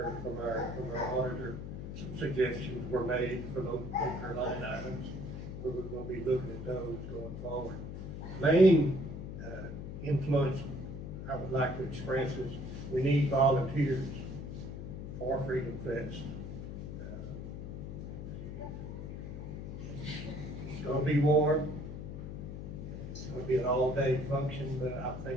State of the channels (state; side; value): noise; left; hum, 7 dB below the sound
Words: from our auditor, some suggestions were made for those line items. We're going to be looking at those going forward. Main influence I would like to express is we need volunteers for Freedom Fest. It's going to be warm. It's going to be an all-day function, but I